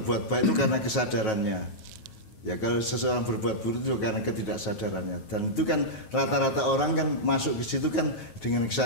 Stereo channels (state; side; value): late; right; 9.3 ms